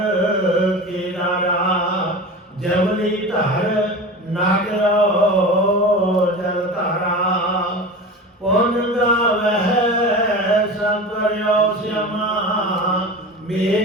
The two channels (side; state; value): both; normal; correlation 0.31